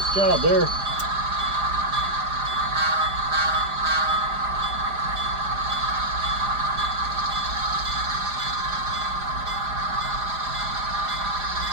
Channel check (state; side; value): late; left; 4.9 ms